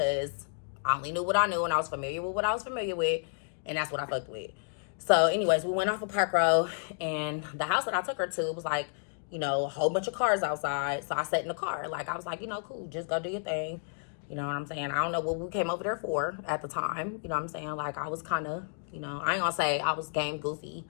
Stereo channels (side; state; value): right; silent; digital silence